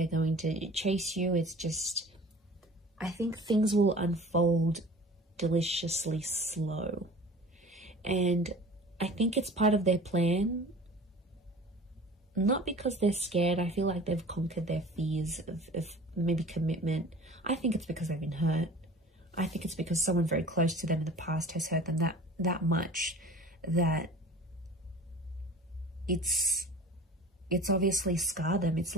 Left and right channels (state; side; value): normal; both; correlation 0.42